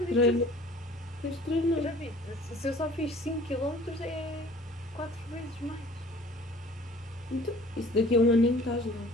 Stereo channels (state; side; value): normal; both; correlation 0.50